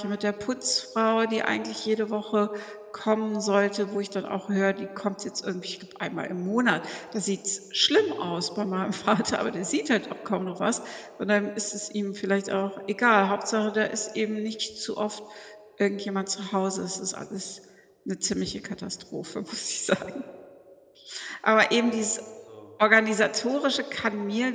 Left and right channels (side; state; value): both; identical; correlation 1.00